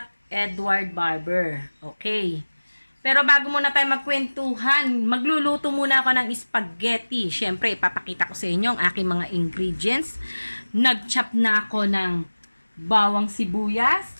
Edward Barber? Okay. Pero bago muna tayo magkwentuhan, magluluto muna ako ng spaghetti. Siyempre, ipapakita ko sa inyo ang aking mga ingredients. Nag-chop na ako ng bawang sibuyas.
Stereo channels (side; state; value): both; inverted; correlation -1.00